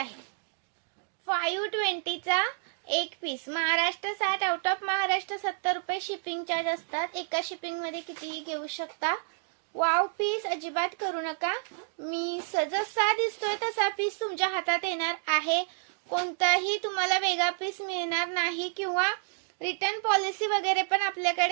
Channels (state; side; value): silent; left; digital silence